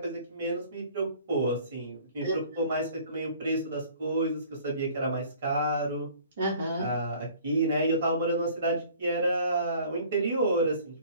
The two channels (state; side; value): inverted; both; correlation -0.52